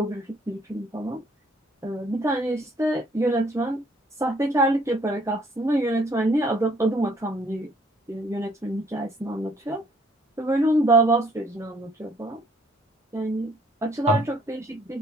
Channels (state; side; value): normal; both; correlation 0.63